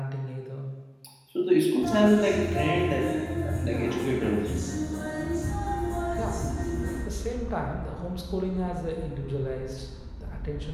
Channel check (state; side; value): identical; both; correlation 1.00